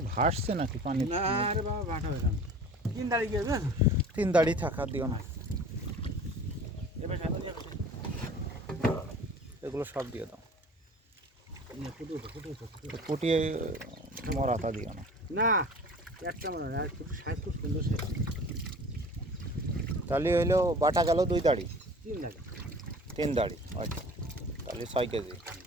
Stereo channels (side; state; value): both; normal; correlation 0.43